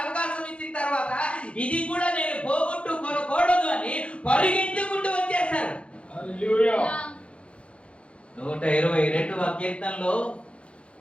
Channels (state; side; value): late; right; 0.060 ms